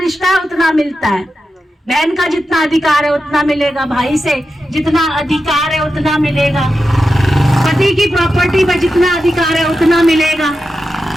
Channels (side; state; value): both; normal; correlation 0.90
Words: है उतना मिलता है। बहन का जितना अधिकार है उतना मिलेगा, भाई से जितना अधिकार है उतना मिलेगा, पति की प्रॉपर्टी पर जितना अधिकार है उतना मिलेगा,